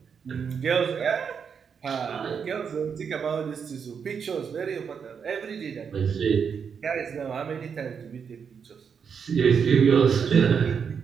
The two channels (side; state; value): left; quieter; 6.7 dB